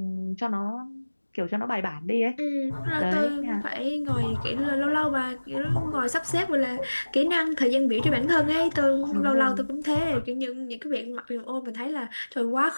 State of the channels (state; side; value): inverted; both; correlation -1.00